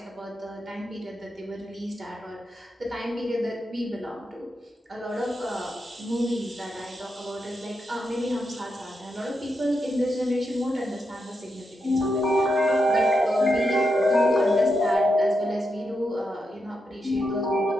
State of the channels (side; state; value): both; normal; correlation 0.85